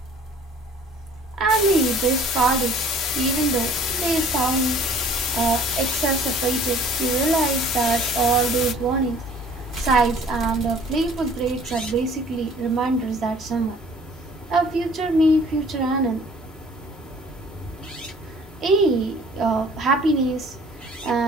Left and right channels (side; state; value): both; normal; correlation 0.52